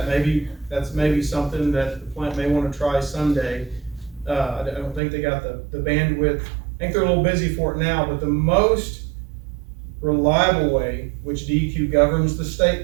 That's maybe something that the plant may want to try someday. I don't think they got the bandwidth. I think they're a little busy for it now, but the most reliable way, which DEQ governs the state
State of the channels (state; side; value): drops out; left; at 5.0 s